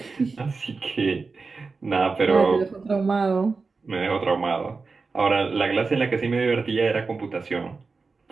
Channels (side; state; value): left; quieter; 4.3 dB